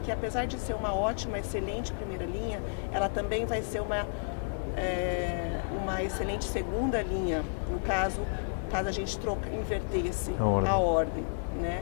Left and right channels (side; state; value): right; silent; digital silence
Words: apesar de ser uma ótima, excelente primeira linha, ela também vai ser uma excelente segunda linha, no caso a gente invertesse a ordem,